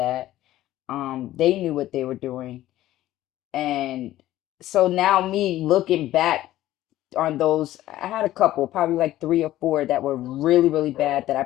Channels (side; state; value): right; quieter; 14.6 dB